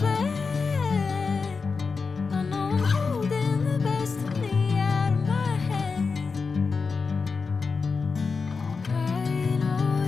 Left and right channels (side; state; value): right; quieter; 4.8 dB